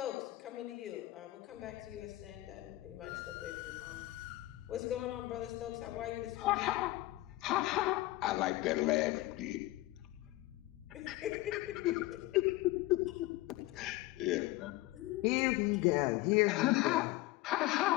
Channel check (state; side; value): quieter; right; 18.1 dB